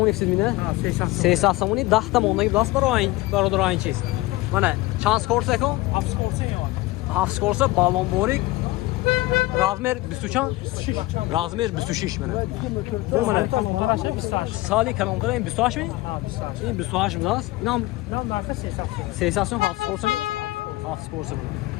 فسید میده؟ 300 سومونی 10 تا موندگی داست برای برادر این چیز. منه چند سکورس کن؟ 7 سکورس. 7 سکورس بالون بوریک. رازمر 20 چند؟ رازمر 26 منه. Bu منه. سالی کلانتر این 28 می؟ این 28 می داست. اینم 300 سوم 7 سکورس می؟ 7 سکورس منه.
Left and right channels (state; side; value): quieter; right; 19.7 dB